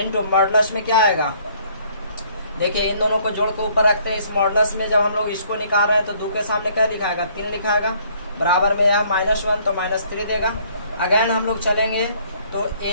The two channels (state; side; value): inverted; both; correlation -0.62